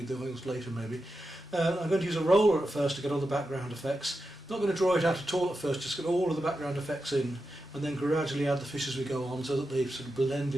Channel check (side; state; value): both; normal; correlation 0.89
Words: the oils later maybe. I'm going to use a roller at first to get all the background effects. Not going to draw it out at all at first, just get all of the background effects in and then gradually add the fish as we go on so that they sort of blend